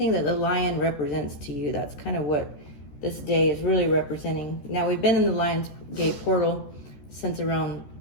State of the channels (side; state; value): right; late; 14 ms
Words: that the lion represents to you, that's kind of what this day is really representing. Now, we've been in the Lion's Gate portal since around